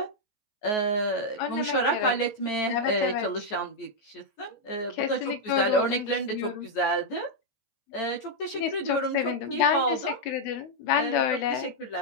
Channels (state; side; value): late; right; 14 ms